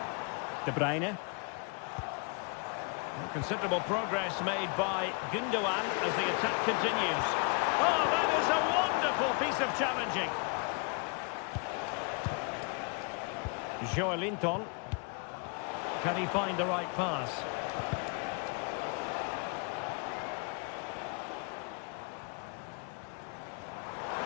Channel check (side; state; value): right; quieter; 35.5 dB